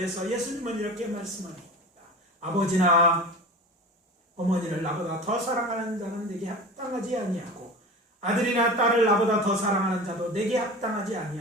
예수님은 이렇게 말씀합니다. 아버지나 어머니를 나보다 더 사랑하는 자는 내게 합당하지 아니하고 아들이나 딸을 나보다 더 사랑하는 자도 내게 합당하지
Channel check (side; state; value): both; normal; correlation 0.33